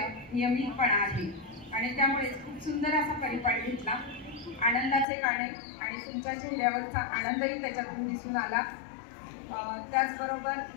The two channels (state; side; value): drops out; right; at 5.1 s